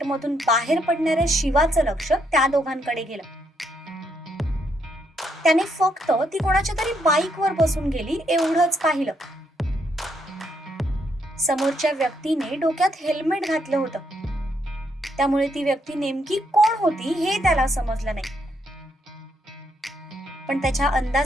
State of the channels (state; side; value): normal; both; correlation 0.75